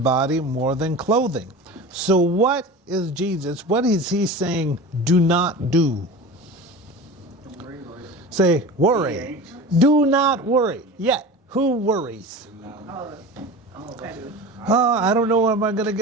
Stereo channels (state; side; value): normal; both; correlation 0.33